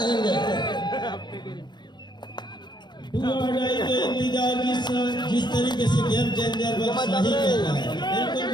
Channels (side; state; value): right; late; 0.21 ms